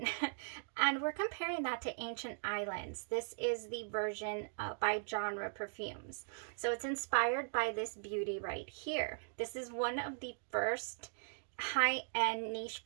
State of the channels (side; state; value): left; silent; digital silence